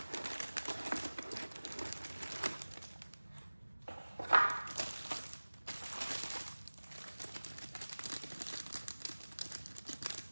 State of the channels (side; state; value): both; inverted; correlation -1.00